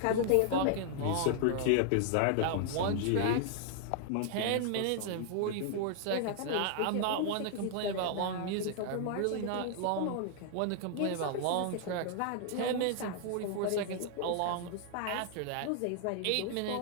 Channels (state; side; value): different; both; correlation 0.00